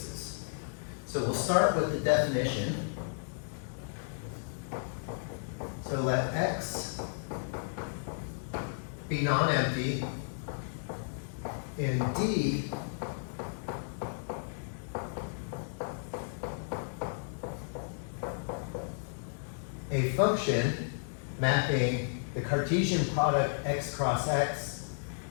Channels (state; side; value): silent; right; digital silence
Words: So we'll start with the definition. So let X be non-empty and D a function mapping the Cartesian product x cross x